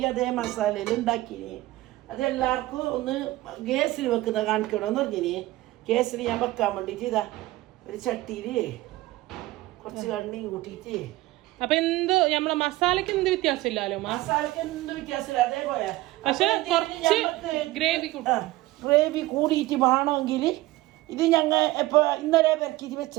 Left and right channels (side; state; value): left; quieter; 18.0 dB